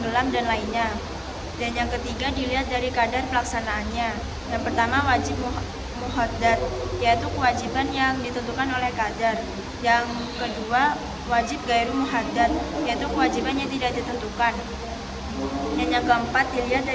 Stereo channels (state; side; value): identical; both; correlation 1.00